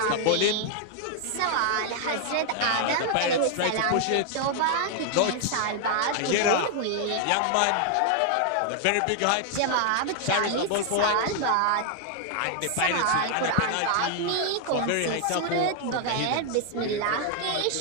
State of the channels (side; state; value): both; different; correlation 0.00